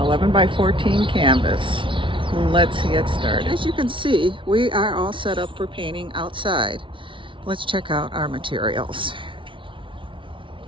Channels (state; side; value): late; left; 0.25 ms